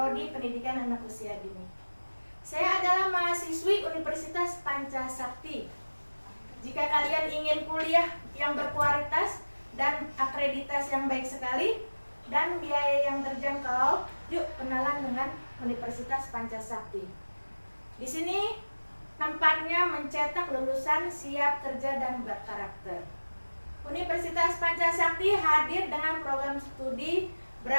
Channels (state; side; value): inverted; both; correlation -1.00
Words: Pendidikan Anak Usia Dini. Saya adalah mahasiswi Universitas Pancasakti. Jika kalian ingin kuliah yang berkualitas dan akreditasi yang baik sekali dan biaya yang terjangkau, yuk kenalan dengan Universitas Pancasakti. Di sini tempatnya mencetak lulusan siap kerja dan berkarakter. Universitas Pancasakti hadir dengan program studi